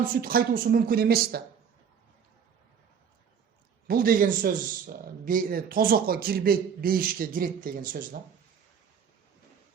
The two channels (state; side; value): quieter; left; 7.3 dB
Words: süt кайтуусу мүмкүн эмес да. Бул деген сөз тозокко кирбейт, бейишке кирет деген сөз да.